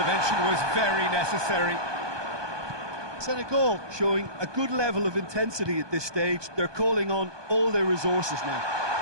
was very necessary. Senegal showing a good level of intensity at this stage. They're calling on all their resources now.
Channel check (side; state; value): left; late; 1.2 ms